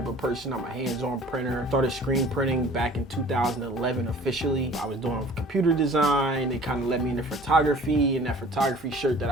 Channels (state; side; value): normal; both; correlation 0.48